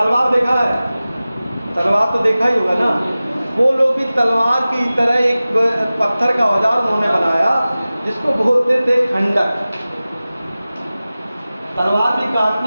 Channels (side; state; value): both; inverted; correlation -0.97